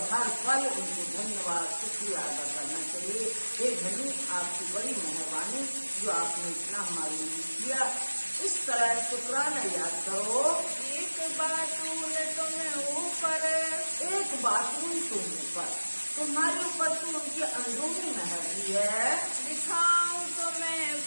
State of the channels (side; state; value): both; inverted; correlation -1.00